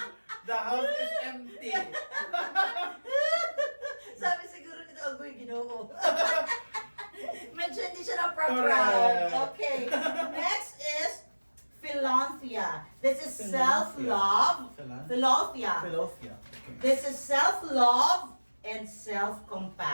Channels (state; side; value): inverted; both; correlation -1.00